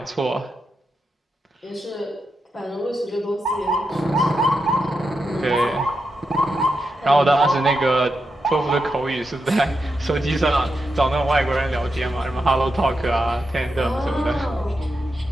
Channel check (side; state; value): both; normal; correlation 0.86